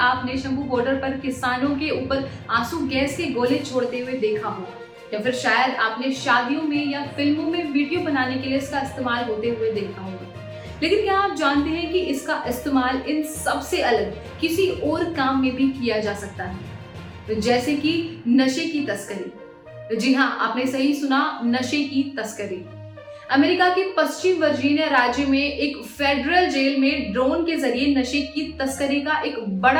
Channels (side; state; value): both; identical; correlation 1.00